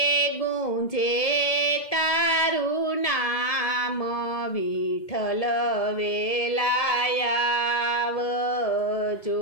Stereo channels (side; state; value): right; late; 1.7 ms